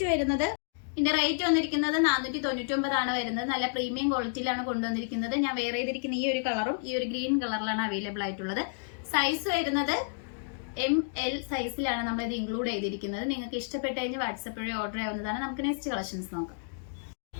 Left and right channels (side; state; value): right; silent; digital silence